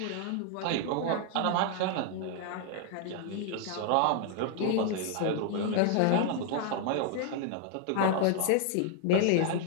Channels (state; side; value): different; both; correlation 0.00